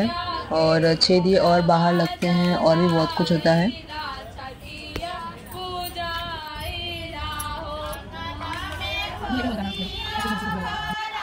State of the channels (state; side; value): identical; both; correlation 1.00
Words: और 6 दिए और बाहर लगते हैं और भी बहुत कुछ होता है।